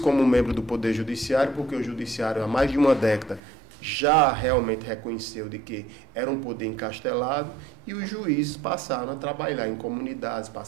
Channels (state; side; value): drops out; left; at 3.4 s